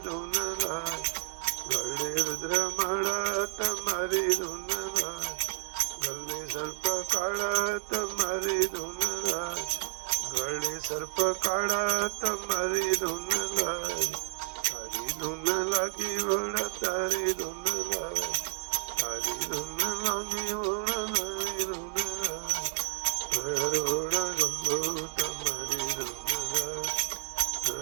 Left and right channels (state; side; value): silent; left; 57 dB below the other